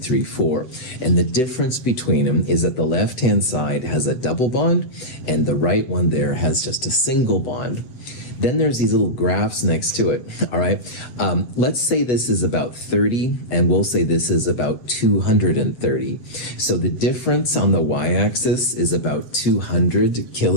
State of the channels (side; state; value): right; late; 8.0 ms